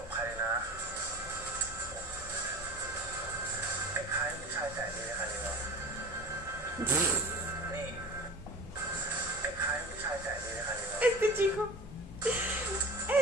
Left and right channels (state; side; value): normal; both; correlation 0.38